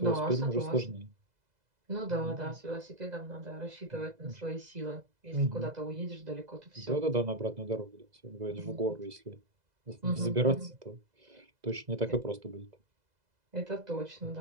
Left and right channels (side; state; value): left; late; 2.0 ms